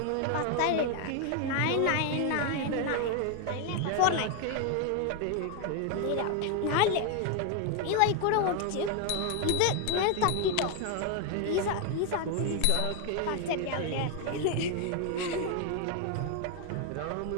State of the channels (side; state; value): both; different; correlation 0.01